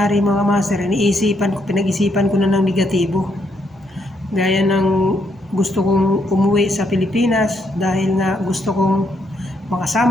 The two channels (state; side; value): normal; both; correlation 0.75